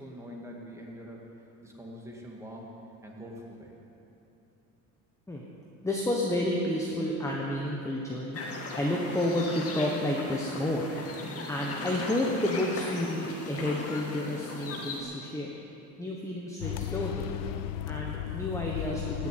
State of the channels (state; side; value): normal; both; correlation 0.45